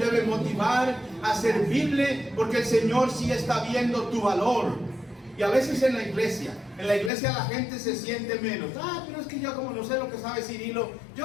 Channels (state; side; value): drops out; right; at 7.1 s